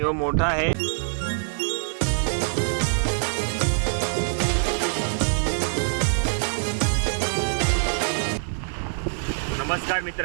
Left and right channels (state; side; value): silent; left; 62 dB below the other